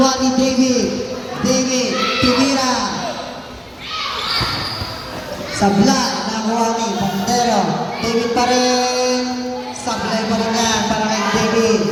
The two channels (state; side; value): identical; both; correlation 1.00